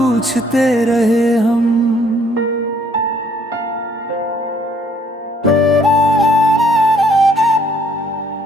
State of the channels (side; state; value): both; normal; correlation 0.63